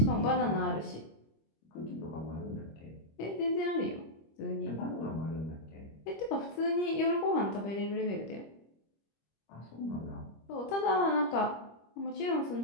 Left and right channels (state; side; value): late; right; 25 ms